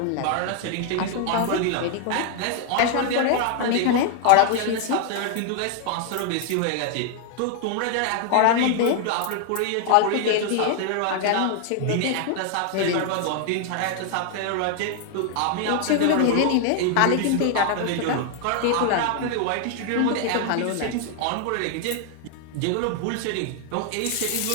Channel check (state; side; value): different; both; correlation 0.00